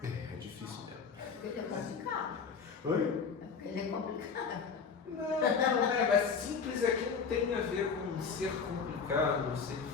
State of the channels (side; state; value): right; quieter; 5.7 dB